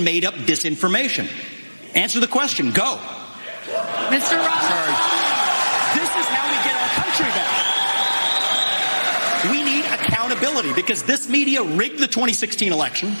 made up disinformation? Answer the question. Go. Mr. Ross. This is how we get our country back. We need accountability because this media rigged the 2016 election.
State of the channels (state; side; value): inverted; both; correlation -1.00